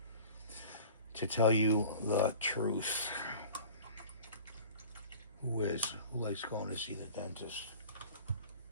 To tell you the truth, who likes going to see the dentist?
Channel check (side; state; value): both; inverted; correlation -0.43